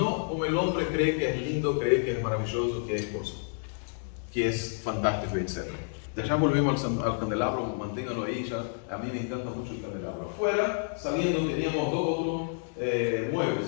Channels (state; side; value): silent; right; digital silence